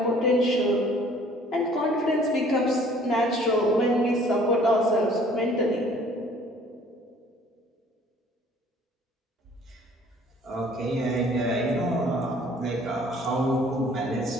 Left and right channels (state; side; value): normal; both; correlation 0.55